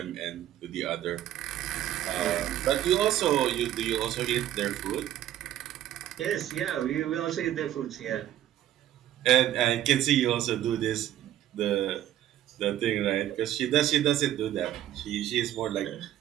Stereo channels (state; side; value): quieter; left; 12.4 dB